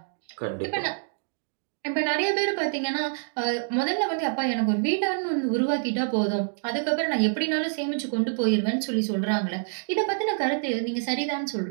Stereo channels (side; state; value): left; silent; digital silence